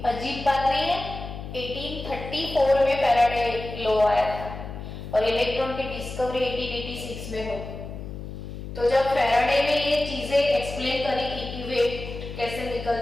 अजीब बात नहीं है. 1834 में फैराडे लॉ आया था और इलेक्ट्रॉन की डिस्कवरी 1886 में हुई. तो जब फैराडे ने ये चीजें एक्सप्लेन करी कि वेट कैसे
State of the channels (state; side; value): noise; left; hum, 10 dB below the sound